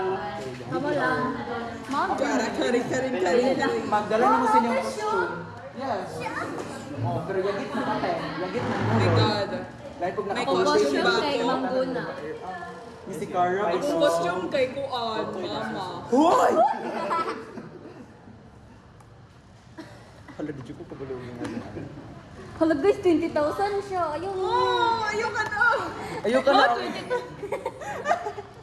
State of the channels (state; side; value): identical; both; correlation 1.00